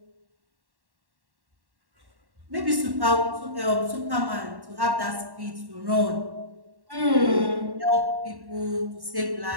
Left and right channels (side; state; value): left; late; 1.1 ms